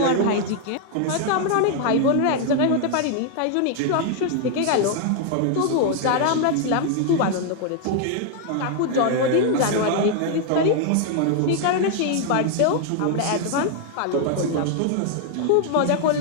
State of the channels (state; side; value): different; both; correlation 0.00